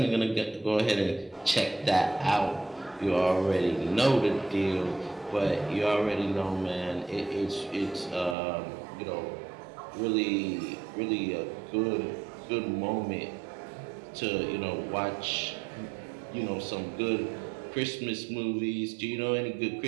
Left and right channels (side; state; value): left; drops out; at 8.3 s